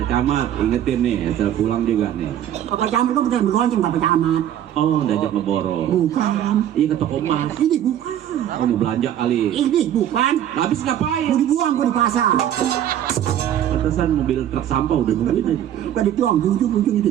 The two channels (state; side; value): quieter; left; 10.9 dB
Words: Camat, ingetin nih, asal pulang juga nih. Pak Camat kok bukan bergonceng Pak Camat. Oh, diajak ngeborong. Bukan. Iya, ke toko emas. Ini bukan. Oh, mau belanja kali. Ini bukan. Habis ngapain? Mau dibuang gua di pasar. Pantesan mobil truk sampah udah nungguin aja. Gua dituang di ujung itu.